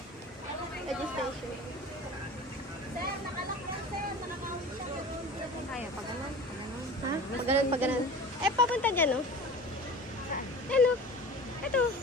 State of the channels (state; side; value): normal; both; correlation 0.37